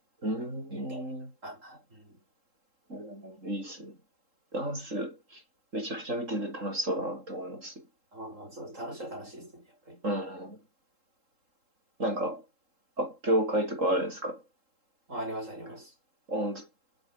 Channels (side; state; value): left; late; 3.7 ms